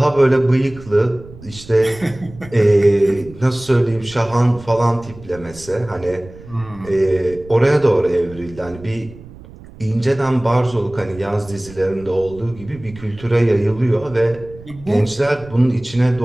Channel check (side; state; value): right; noise; rumble, 19 dB below the sound